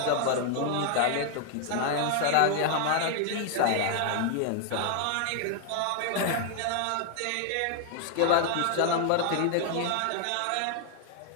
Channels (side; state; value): both; different; correlation 0.00